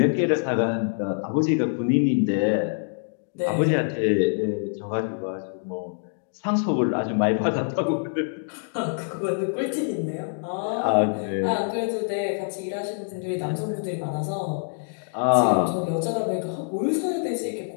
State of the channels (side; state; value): right; silent; digital silence